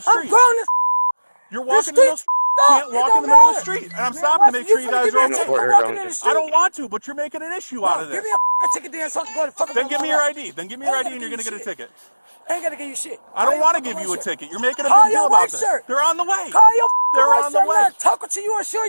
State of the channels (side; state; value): both; inverted; correlation -1.00